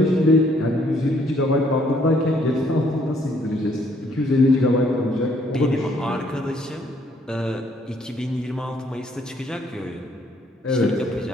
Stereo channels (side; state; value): both; normal; correlation 0.66